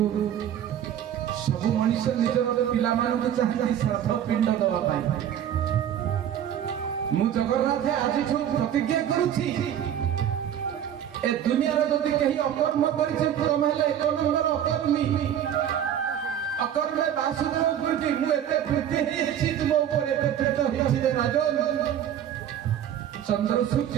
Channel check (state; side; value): quieter; left; 10.1 dB